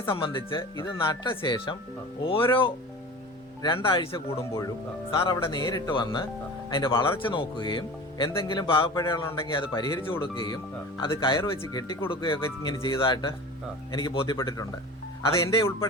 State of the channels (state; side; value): normal; both; correlation 0.36